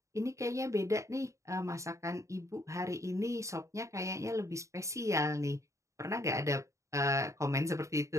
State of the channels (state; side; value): late; left; 0.15 ms